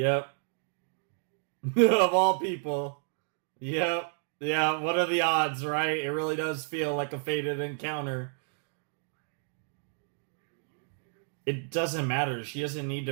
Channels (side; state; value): left; silent; 57 dB below the other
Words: Of all people. Yep. Yeah, what are the odds, right? It really does feel like a fated encounter. It doesn't matter. She doesn't need